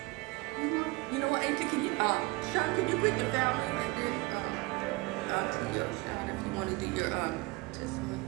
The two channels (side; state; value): left; quieter; 24.0 dB